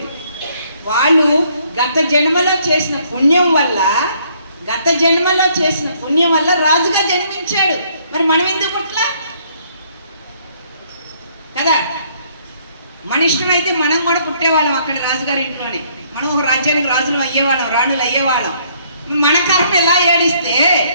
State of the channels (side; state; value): both; inverted; correlation -0.65